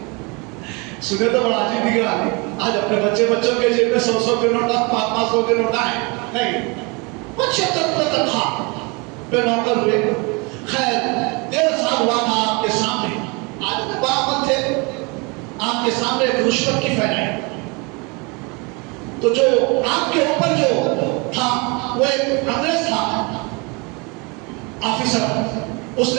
سنے تو بڑا عجیب دکھ رہا ہے، آج اپنے بچوں کے جیب میں 100 کے نوٹ، 500 کے نوٹ آئے نہیں، 75 روپے تنخواہ پہ نوکر ہوئے۔ خیر 1.5 سال ہوا تھا آپ کے سامنے، آج میں باعمل تھے، آپ کے سامنے ایک رشوت کی پھیلائی، تو جو آپ کے اوپر جو تھا وہ ایک انگریز تھا آفیسر، اس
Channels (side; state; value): left; quieter; 29.4 dB